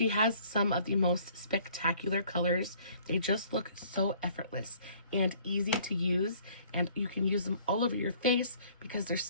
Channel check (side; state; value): both; inverted; correlation -0.56